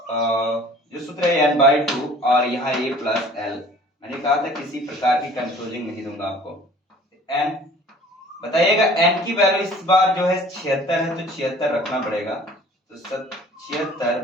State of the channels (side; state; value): both; normal; correlation 0.49